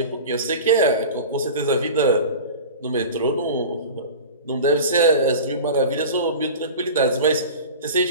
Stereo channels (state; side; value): inverted; both; correlation -0.34